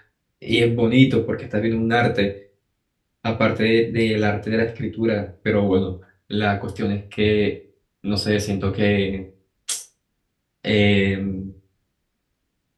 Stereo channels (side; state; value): both; identical; correlation 1.00